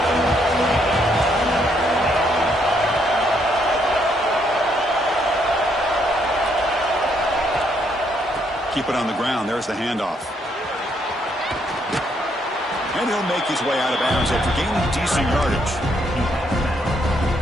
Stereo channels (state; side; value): normal; both; correlation 0.72